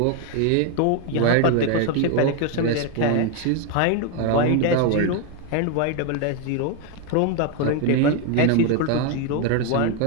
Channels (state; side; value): different; both; correlation 0.01